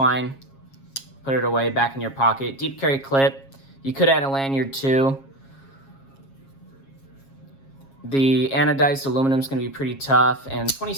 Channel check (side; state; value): right; late; 7.4 ms